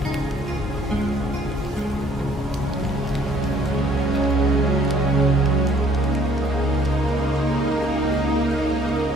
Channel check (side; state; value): both; normal; correlation 0.61